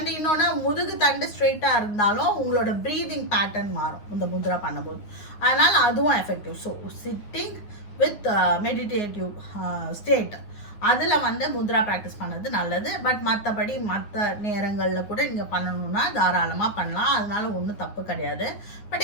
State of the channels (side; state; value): right; late; 9.6 ms